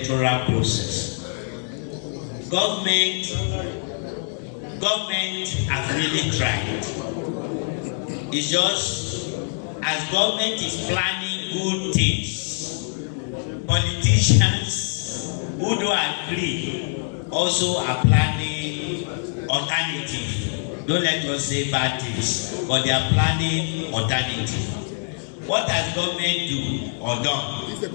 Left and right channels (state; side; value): silent; right; 63 dB below the other